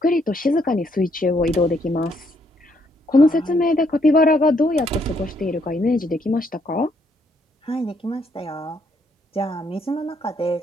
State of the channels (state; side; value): normal; both; correlation 0.72